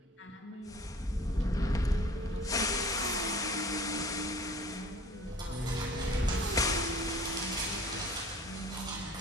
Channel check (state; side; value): normal; both; correlation 0.46